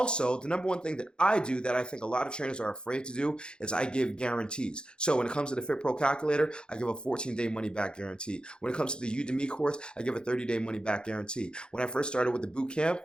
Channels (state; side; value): late; right; 0.049 ms